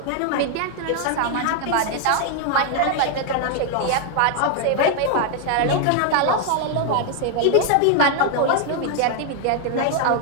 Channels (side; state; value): both; different; correlation 0.00